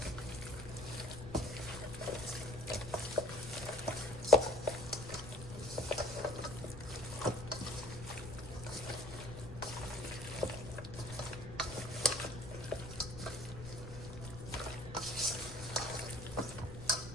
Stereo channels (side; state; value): left; noise; rumble, 11 dB below the sound